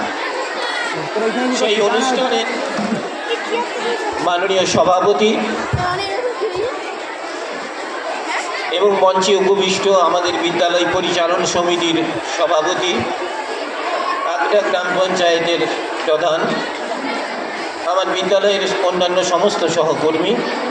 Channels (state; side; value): identical; both; correlation 1.00